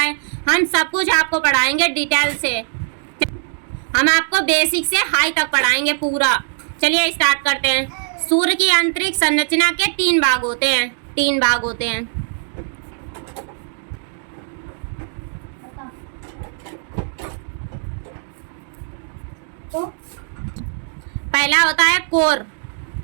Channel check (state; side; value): silent; left; 56 dB below the other